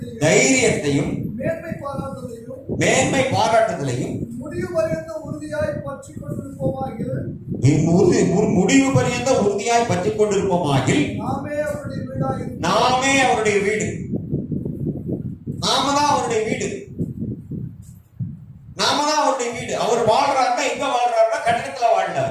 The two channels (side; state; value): both; identical; correlation 1.00